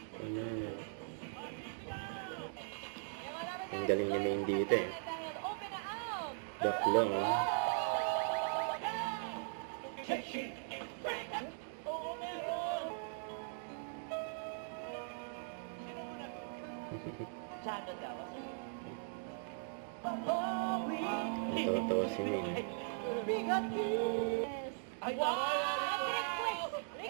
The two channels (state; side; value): silent; left; digital silence